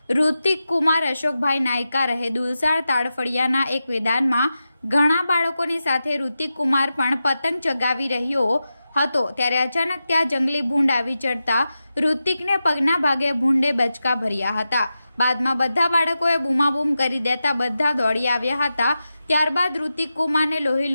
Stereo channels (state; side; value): inverted; both; correlation -0.91